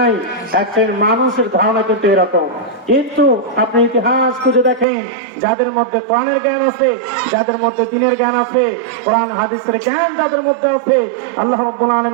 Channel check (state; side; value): drops out; left; at 4.9 s